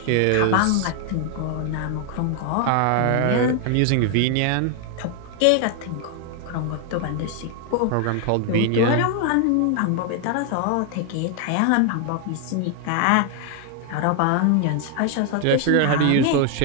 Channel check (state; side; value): different; both; correlation 0.00